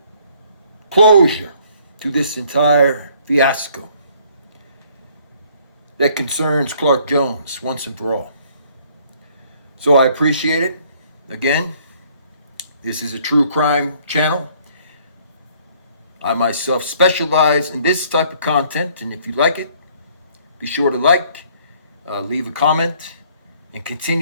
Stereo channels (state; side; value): inverted; both; correlation -0.61